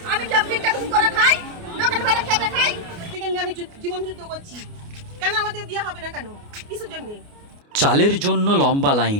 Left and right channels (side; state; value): left; late; 29 ms